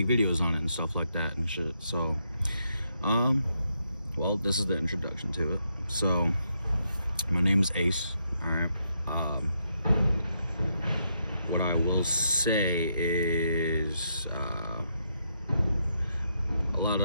videos on it and stuff like that and shit. So, well, this is the introduction to it. So, my name is Ace. All right. What I will say is a lot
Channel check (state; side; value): inverted; both; correlation -0.79